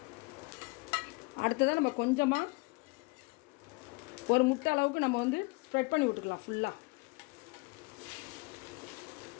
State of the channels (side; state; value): right; quieter; 27.4 dB